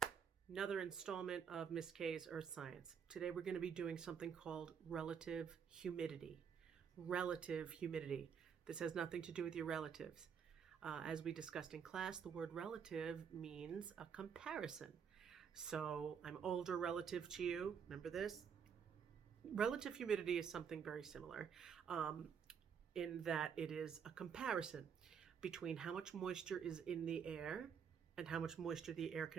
another installment of Miss K's Earth Science. Today we're going to be doing something called relative humidity. Relative humidity. This has nothing to do with your relatives. As we discussed in class, the word relative means a comparison. So I'm older relative to you. Remember this? Relative humidity is something very similar in that it is a comparison between how much moisture is in the air and how much moisture the air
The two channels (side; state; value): left; quieter; 7.2 dB